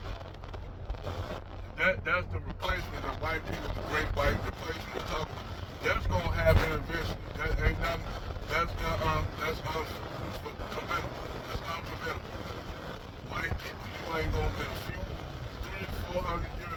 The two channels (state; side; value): identical; both; correlation 1.00